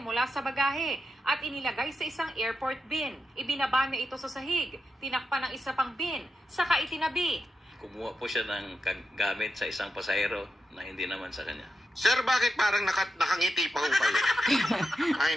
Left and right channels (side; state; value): both; normal; correlation 0.88